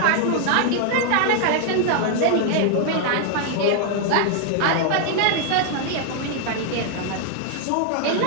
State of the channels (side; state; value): both; different; correlation 0.00